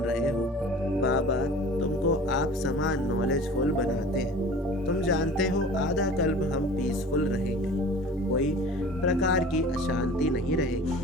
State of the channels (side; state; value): both; normal; correlation 0.42